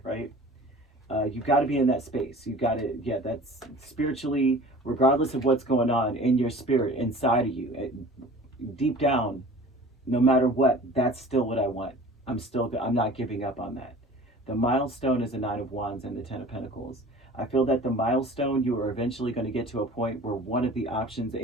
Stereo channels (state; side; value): normal; both; correlation 0.43